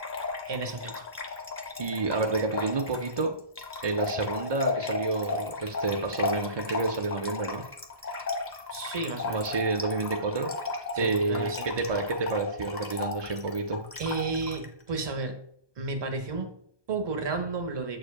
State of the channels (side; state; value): left; late; 1.2 ms